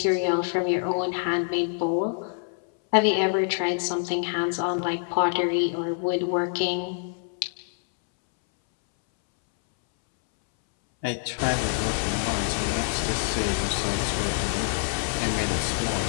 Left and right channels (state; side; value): silent; right; 61 dB below the other